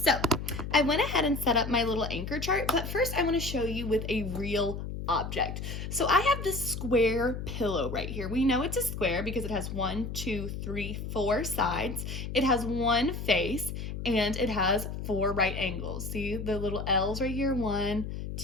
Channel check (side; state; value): left; noise; hum, 6 dB below the sound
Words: I went ahead and set up my little anchor chart, but first I want to show you with a real object. So I have this square pillow right here. We know it's a square because it has 1, 2, 3, 4 sides. It has one face and it has 4 right angles. See the little L's right here? 1,